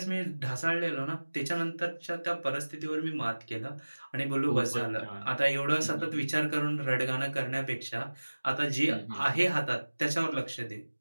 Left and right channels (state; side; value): inverted; both; correlation -1.00